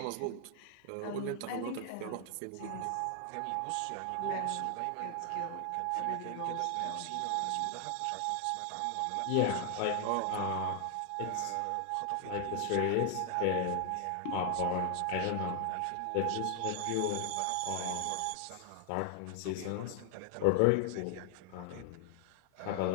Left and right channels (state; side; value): different; both; correlation 0.00